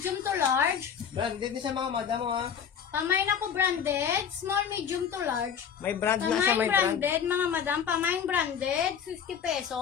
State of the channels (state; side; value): quieter; right; 7.7 dB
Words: to large. Branded din siya mga madam oh, ha. Pamain ako branded. Small, medium to large. May brand na siya, Pamain may brand. branded, mga madam. Pamain branded, 50